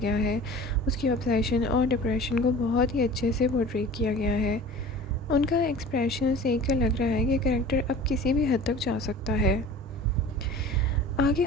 है। उसकी ऑब्सेशन और डिप्रेशन को बहुत ही अच्छे से पोर्ट्रे किया गया है। उनका एक्सप्रेशन देख कर लग रहा है कि कैरेक्टर अब किसी भी हद तक जा सकता है। आगे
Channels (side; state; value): both; normal; correlation 0.41